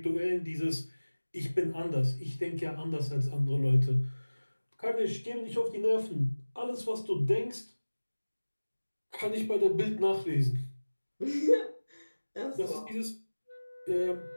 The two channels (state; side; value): inverted; both; correlation -1.00